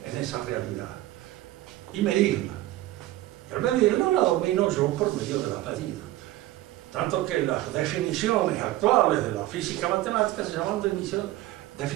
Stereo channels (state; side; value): quieter; left; 16.1 dB